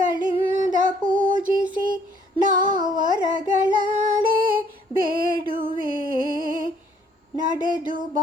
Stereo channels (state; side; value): normal; both; correlation 0.63